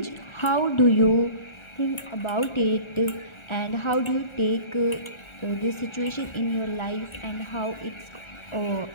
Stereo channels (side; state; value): right; late; 1.4 ms